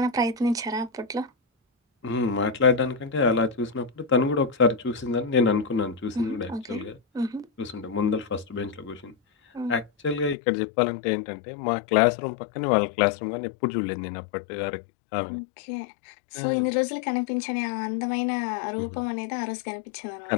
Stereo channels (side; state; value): right; drops out; at 10.4 s